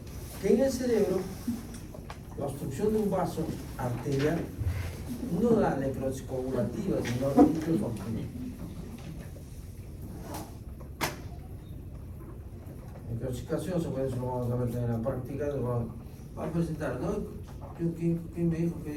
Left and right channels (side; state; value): both; identical; correlation 1.00